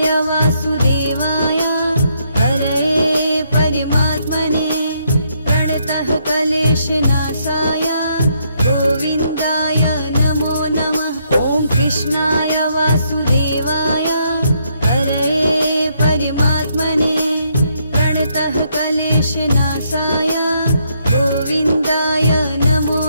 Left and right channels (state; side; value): inverted; both; correlation -0.74